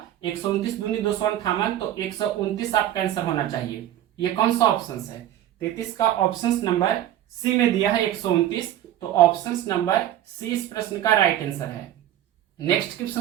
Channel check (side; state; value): left; quieter; 12.4 dB